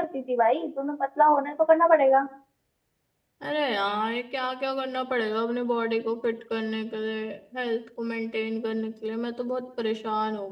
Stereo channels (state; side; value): identical; both; correlation 1.00